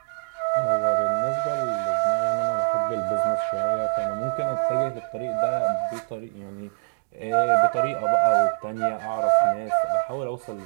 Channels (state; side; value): silent; left; digital silence